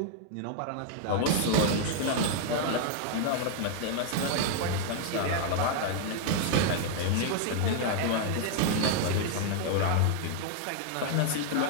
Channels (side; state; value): both; different; correlation 0.00